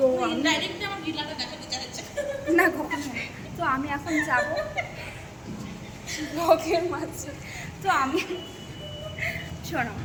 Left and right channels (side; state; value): both; identical; correlation 1.00